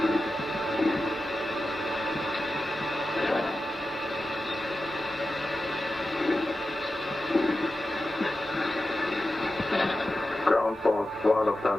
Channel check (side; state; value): both; normal; correlation 0.92